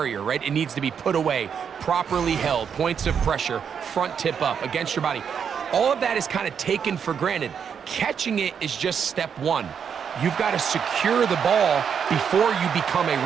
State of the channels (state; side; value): quieter; left; 7.3 dB